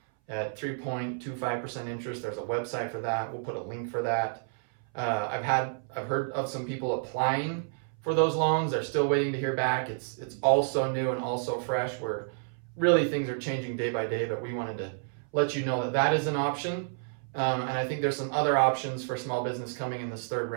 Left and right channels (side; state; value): left; silent; 58 dB below the other